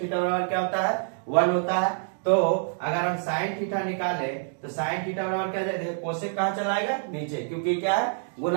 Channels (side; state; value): left; silent; 60 dB below the other